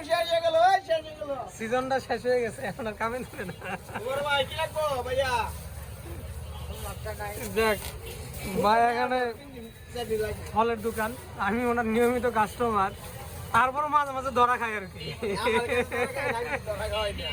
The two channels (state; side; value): identical; both; correlation 1.00